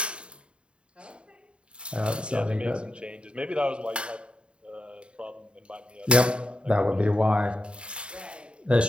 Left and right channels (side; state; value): left; late; 0.054 ms